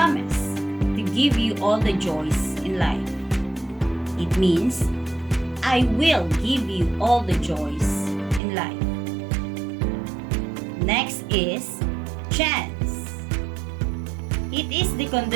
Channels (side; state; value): left; drops out; at 8.4 s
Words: to give you all the joys in life. It means I will give you all the joys in life. Next is chance. It is the